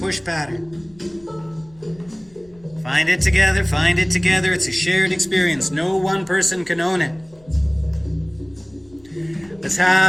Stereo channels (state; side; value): noise; left; rumble, 28 dB below the sound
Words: pattern. Find it together, find it together. It's a shared experience. No one person can own it. Let's